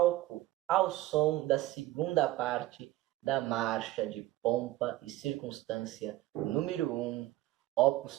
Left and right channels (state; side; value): quieter; left; 16.5 dB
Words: ao som da segunda parte da marcha de Pompa e Circunstância número 1, Opus